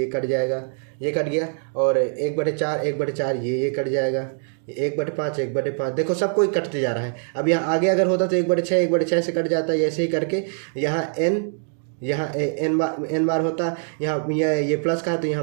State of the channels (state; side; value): silent; left; 58 dB below the other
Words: कट जाएगा, ये कट गया। और 1/4 ये कट जाएगा, 1/5 1/5 देखो सब कोई कटते जा रहा है। अब यहाँ आगे अगर होता तो 1/6 से कट जाता है। ऐसे ही करके यहाँ एन बार होता, यहाँ ये प्लस का है तो यहाँ